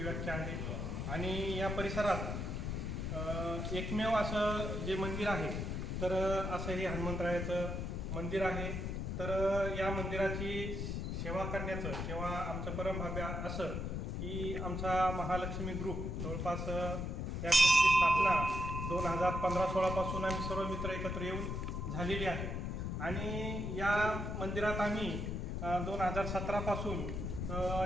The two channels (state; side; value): noise; left; rumble, 3 dB below the sound